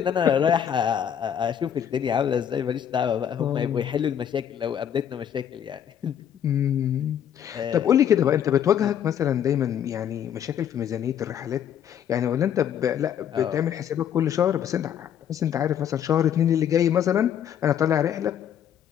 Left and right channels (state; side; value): quieter; right; 9.2 dB